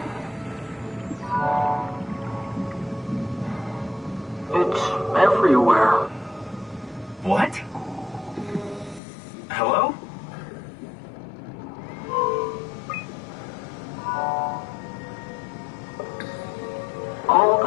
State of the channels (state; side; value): drops out; right; at 9.0 s